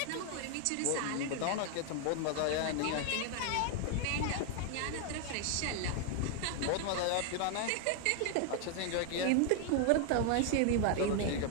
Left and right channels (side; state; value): both; different; correlation 0.00